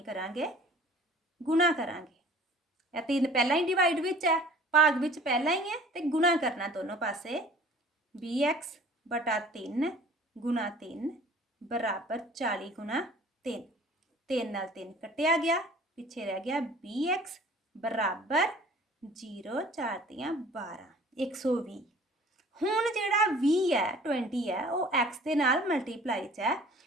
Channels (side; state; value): both; normal; correlation 0.48